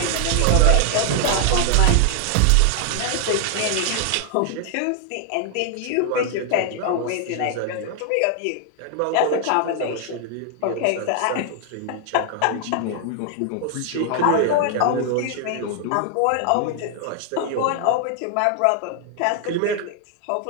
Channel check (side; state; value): both; different; correlation 0.00